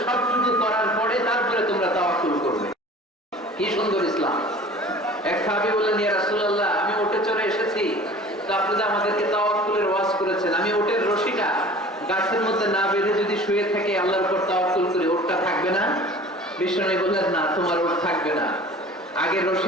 সবটুকু করার পরে তারপরে তোমরা তাওয়াক্কুল করবে। কি সুন্দর ইসলাম! এক সাহাবী বললেন, ইয়া রাসূলুল্লাহ, আমি উটে চড়ে এসেছি, তো আপনি যে আমাদেরকে তাওয়াক্কুলের ওয়াজ করেছেন, আমি উটের রশিটা গাছের মধ্যে না বেঁধে যদি শুয়ে থাকে আল্লাহর উপর তাওয়াক্কুল করি, উটটা থাকবে না? বিষ্ণু বললেন, না, তোমার উট থাকবে না, আগে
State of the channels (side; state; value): both; normal; correlation 0.43